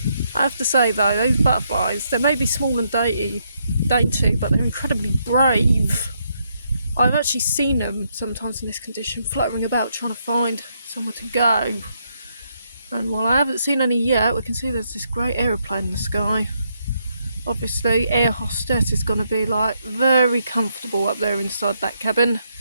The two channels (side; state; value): both; inverted; correlation -0.77